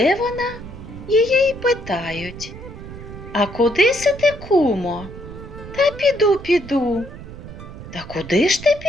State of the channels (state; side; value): noise; right; rumble, 13 dB below the sound